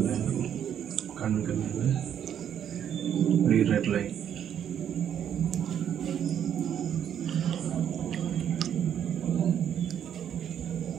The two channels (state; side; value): quieter; left; 9.3 dB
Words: கண்ணுக்கு மேலே ரெட் லைன்.